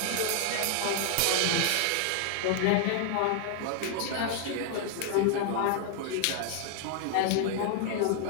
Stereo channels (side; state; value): both; different; correlation 0.00